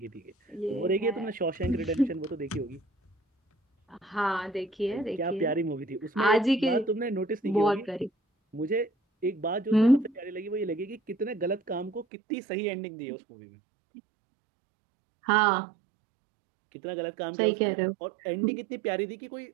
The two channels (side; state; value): left; drops out; at 12.1 s